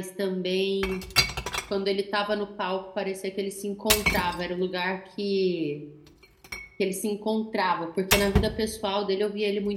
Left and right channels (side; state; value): both; identical; correlation 1.00